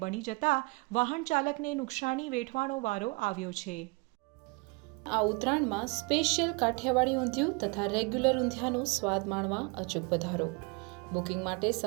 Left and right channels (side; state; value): left; quieter; 28.6 dB